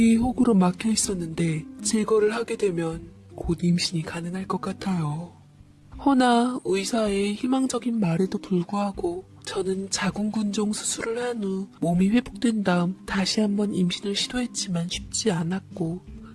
혹으로 막혀 있었는데 제거를 하게 되면 곧 임신이 가능할 것 같아요. 허나 의사의 희망적인 말에도 불구하고 저는 자궁근종 수술을 한 후 몸이 회복된 다음 다시 한번 임신을 시도했지만 쉽지 않았고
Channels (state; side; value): identical; both; correlation 1.00